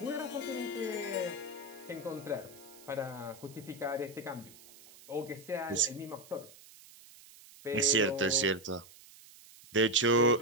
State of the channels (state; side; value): noise; right; hiss, 21 dB below the sound